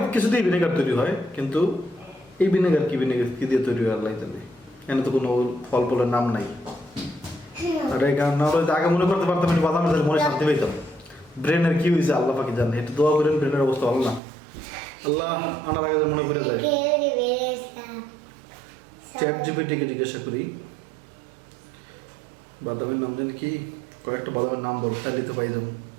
কিছুতেই ভিনেগার তৈরি হয়, কিন্তু এই ভিনেগার কি দিয়ে তৈরি হয় আল্লাহ জানে। এখানে তো কোনো ফল ফলের নাম নাই। আর এই কারণ না হলে আগে মনে করতে পারতাম আমি বাদামের তাহলে মনে শান্তি পাইতাম। ব্রেনের কি হয়েছে আল্লাহ পাকি জানে, একটু দোয়া করেন ব্রেনের অবস্থা ভালো না। আল্লাহ আনার আগে মনে করে যায়। চ্যাট জিপিটিকে জিজ্ঞাসা করি বাদামের নাম জানি কি, কয়েকটা বাদামের নাম বল, তাহলে তো পাই যাবো।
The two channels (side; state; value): left; drops out; at 14.2 s